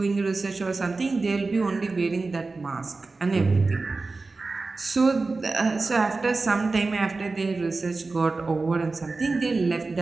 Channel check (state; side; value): quieter; left; 3.7 dB